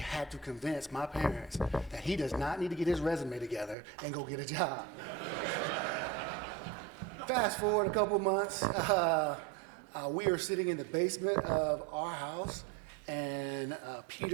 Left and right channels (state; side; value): drops out; left; at 3.8 s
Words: to convince my parents that he does not need to get his resume together and go get a job. Fast forward a couple months, we are sitting in the basement of our house, and